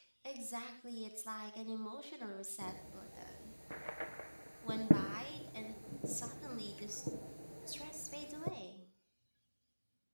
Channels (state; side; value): inverted; both; correlation -1.00